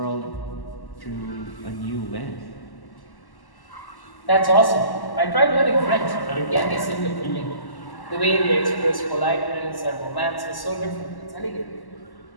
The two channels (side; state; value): right; late; 1.1 ms